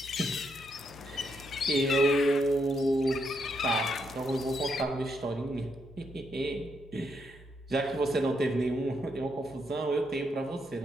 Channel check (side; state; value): both; normal; correlation 0.78